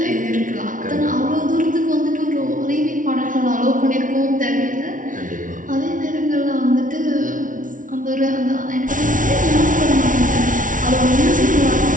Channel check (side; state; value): left; late; 0.38 ms